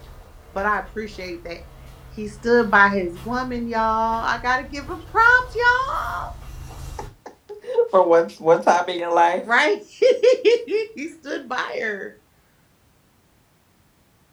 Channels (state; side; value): identical; both; correlation 1.00